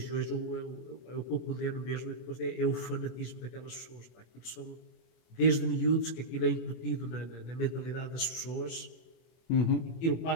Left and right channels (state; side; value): late; right; 24 ms